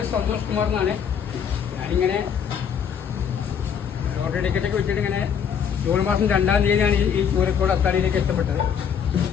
സന്തോഷ് കുമാർ എന്നാണ്. ഞാനിങ്ങനെ ലോട്ടറി ടിക്കറ്റൊക്കെ വെച്ചിട്ട് ഇങ്ങനെ ജൂൺ മാസം 2-ാം തീയതിയാണ് ഈ ചൂരക്കോട് അത്താണിയിലേക്ക് എത്തപ്പെട്ടത്.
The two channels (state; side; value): quieter; right; 7.6 dB